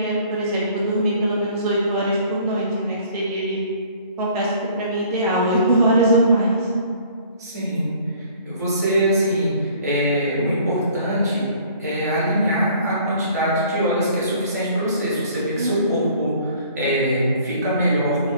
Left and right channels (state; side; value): inverted; both; correlation -0.55